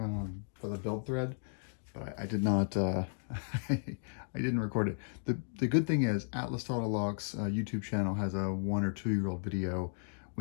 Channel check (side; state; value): right; silent; digital silence